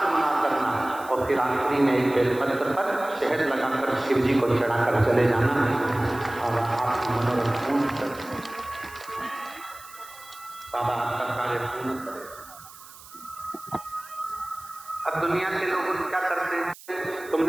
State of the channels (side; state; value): right; noise; hiss, 19 dB below the sound